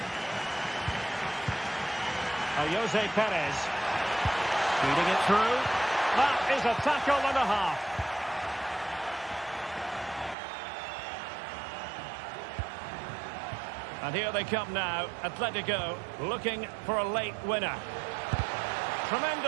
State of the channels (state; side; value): drops out; left; at 10.4 s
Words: Jose Perez. Feeding it through. That is a tackle and a half. And here they come now, Atletico looking for a late winner.